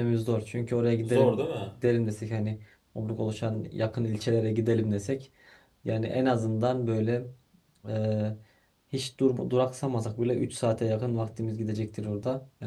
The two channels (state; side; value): identical; both; correlation 1.00